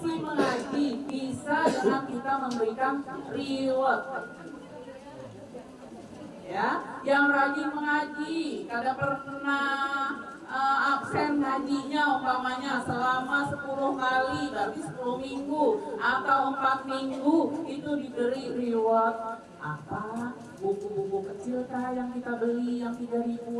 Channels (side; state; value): both; identical; correlation 1.00